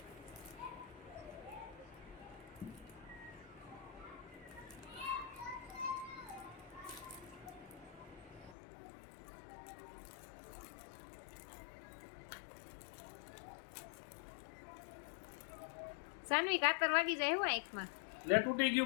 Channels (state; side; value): drops out; right; at 8.6 s